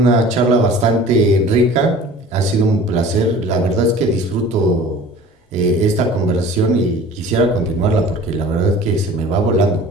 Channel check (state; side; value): normal; both; correlation 0.44